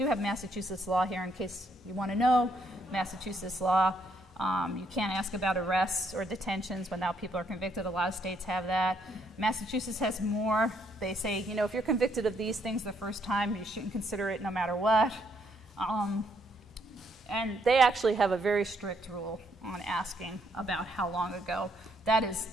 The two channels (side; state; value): both; normal; correlation 0.72